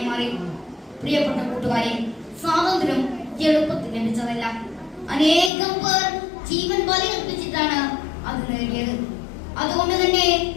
മാറി. പ്രിയപ്പെട്ട കൂട്ടുകാരെ, സ്വാതന്ത്ര്യം എളുപ്പത്തിൽ ലഭിച്ചതല്ല. അനേകം പേർ ജീവൻ ബലിയർപ്പിച്ചിട്ടാണ് അത് നേടിയത്. അതുകൊണ്ട് തന്നെ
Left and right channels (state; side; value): drops out; right; at 5.5 s